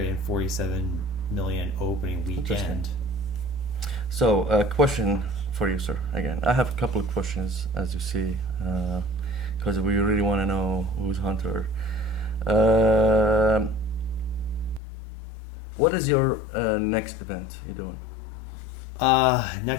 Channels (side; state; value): right; drops out; at 14.8 s